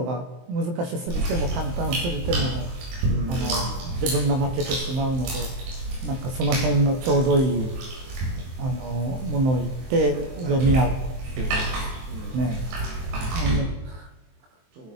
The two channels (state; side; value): late; left; 23 ms